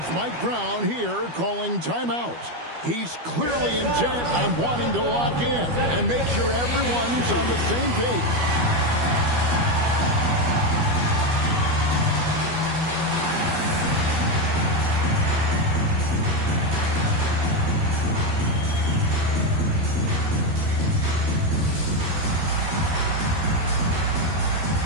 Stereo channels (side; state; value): left; late; 12 ms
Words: Mike Brown here calling timeout. He's clearly intent on wanting to lock in and make sure everyone's on the same page.